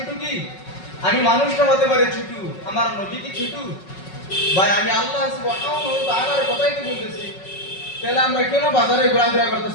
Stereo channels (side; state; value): right; late; 5.4 ms